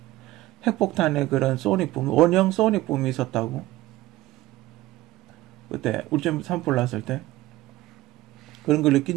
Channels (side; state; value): left; quieter; 16.9 dB